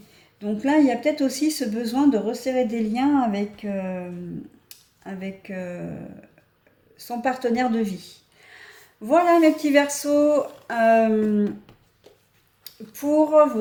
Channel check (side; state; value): both; identical; correlation 1.00